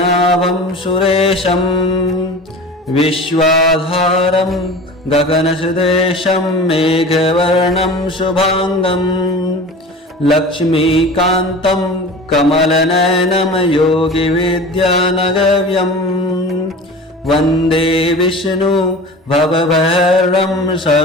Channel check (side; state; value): both; normal; correlation 0.36